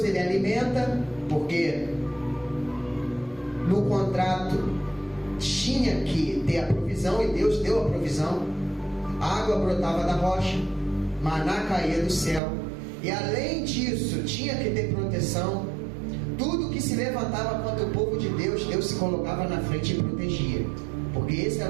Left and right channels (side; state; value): left; drops out; at 12.4 s